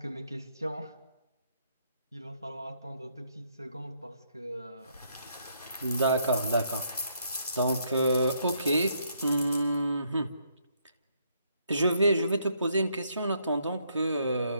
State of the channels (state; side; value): inverted; both; correlation -0.72